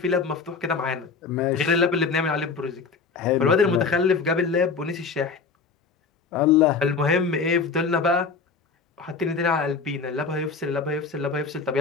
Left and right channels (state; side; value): quieter; right; 4.9 dB